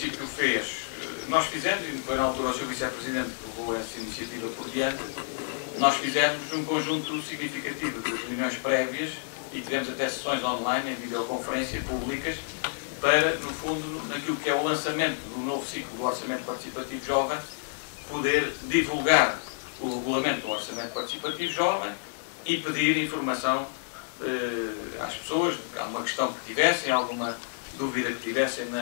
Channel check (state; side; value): silent; right; digital silence